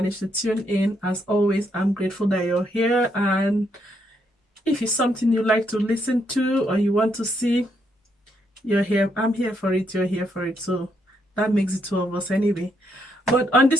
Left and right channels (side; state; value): both; normal; correlation 0.76